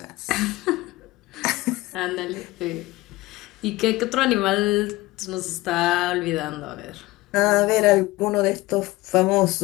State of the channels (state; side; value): quieter; right; 19.5 dB